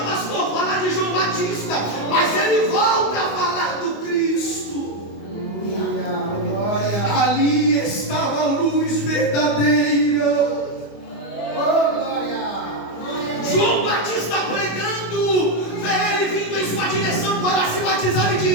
pastor, falar de João Batista, mas ele volta a falar do Cristo. Glória. Ali estava a luz verdadeira. Oh, glória. João Batista pregando, vê ele vindo em sua direção para se batizar e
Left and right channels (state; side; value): late; right; 25 ms